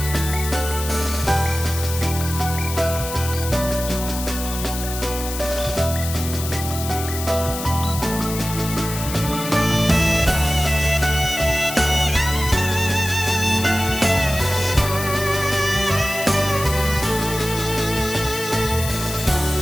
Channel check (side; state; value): left; noise; hiss, 8 dB below the sound